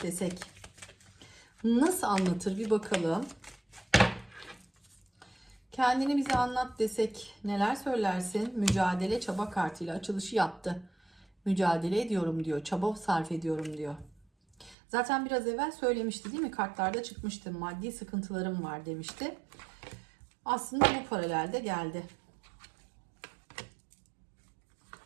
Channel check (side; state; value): left; drops out; at 14.8 s